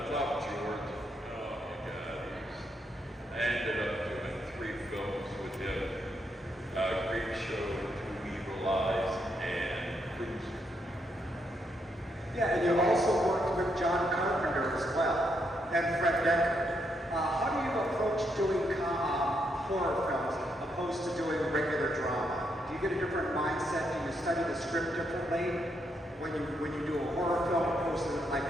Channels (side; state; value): both; normal; correlation 0.78